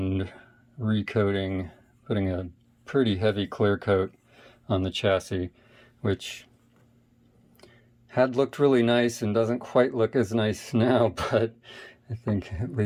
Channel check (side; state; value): both; identical; correlation 1.00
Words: recoating, putting a pretty heavy clear coat on the chassis, which had looked really nice and doesn't quite look as nice now, but I think at